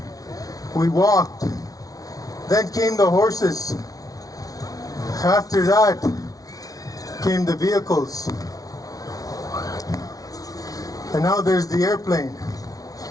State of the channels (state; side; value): late; right; 0.18 ms